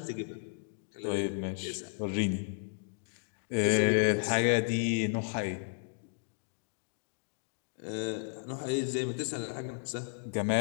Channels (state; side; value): silent; right; digital silence